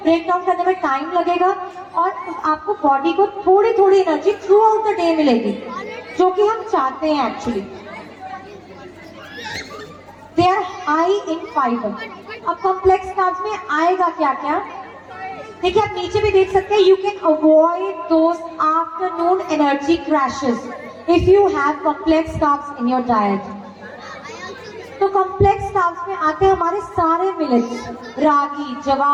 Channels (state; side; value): identical; both; correlation 1.00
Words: डाउन करने में टाइम लगेगा और आपको बॉडी को थोड़ी थोड़ी energy throughout the day मिलेगी, जो कि हम चाहते हैं actually. They are high in fibre. अब कॉम्प्लेक्स कार्ब्स में आएगा क्या क्या? देखिए आप नीचे भी देख सकते हैं. You can avoid those afternoon energy crashes if you have complex carbs in your diet. तो कॉम्प्लेक्स कार्ब्स में आते हैं हमारे सारे मिलेट्स, रागी,